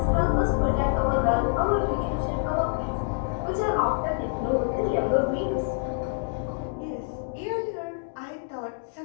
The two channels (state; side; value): silent; right; digital silence